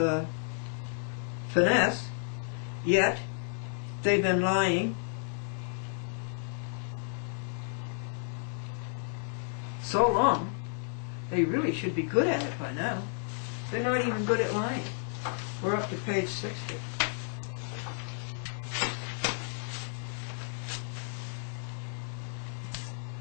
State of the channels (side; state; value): right; silent; digital silence